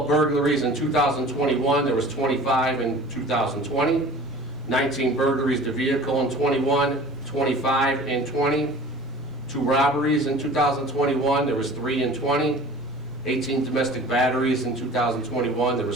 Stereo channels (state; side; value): normal; both; correlation 0.43